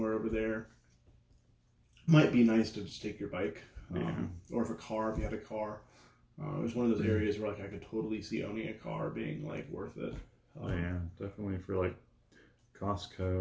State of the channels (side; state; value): both; identical; correlation 1.00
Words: over there, it might be nice to just take your bike, or if you had a car. It was one of those areas where I could totally see owning a car being worth it. Definitely for